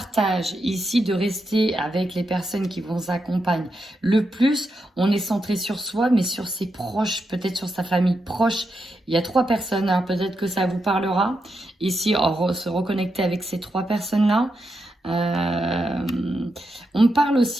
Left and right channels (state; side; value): normal; both; correlation 0.85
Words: ici, de rester avec les personnes qui vous accompagnent le plus. On est centré sur soi, mais sur ses proches, peut-être sur sa famille proche. Il y a 3 personnes, hein, peut-être que ça vous parlera. Ici, se reconnecter avec ces 3 personnes-là. On parle